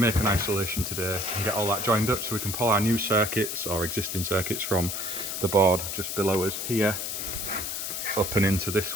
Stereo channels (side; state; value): left; noise; hiss, 4 dB below the sound